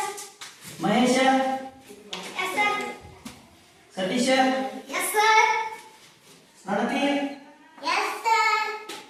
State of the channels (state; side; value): identical; both; correlation 1.00